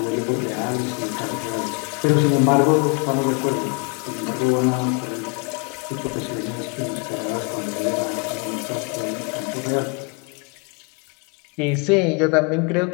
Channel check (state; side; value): quieter; right; 34.2 dB